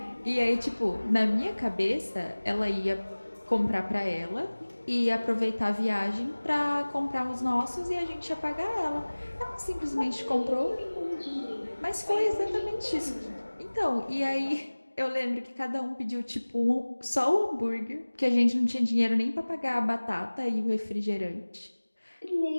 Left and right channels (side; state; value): both; inverted; correlation -1.00